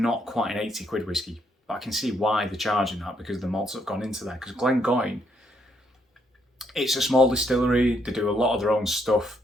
quite an 80 quid whiskey. But I can see why they're charging that, because the malts have gone into there. Because Glengoyne, it's a small distillery. They do a lot of their own stuff.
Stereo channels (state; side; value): normal; both; correlation 0.74